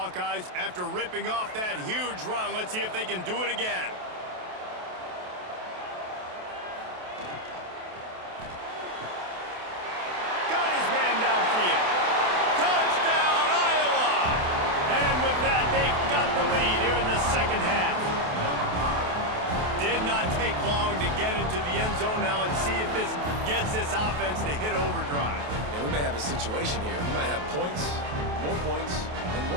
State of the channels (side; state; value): left; late; 28 ms